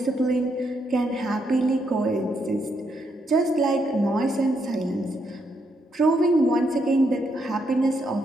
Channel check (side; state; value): both; normal; correlation 0.78